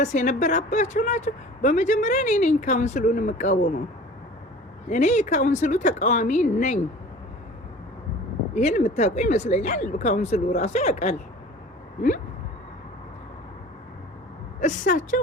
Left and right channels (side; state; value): both; normal; correlation 0.43